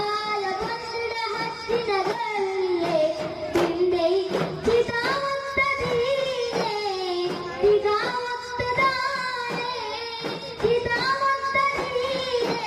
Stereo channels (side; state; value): both; identical; correlation 1.00